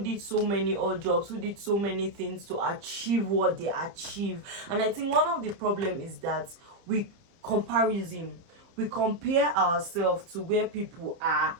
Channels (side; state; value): left; late; 30 ms